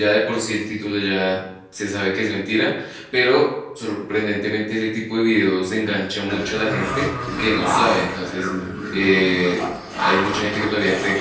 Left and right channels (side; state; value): both; identical; correlation 1.00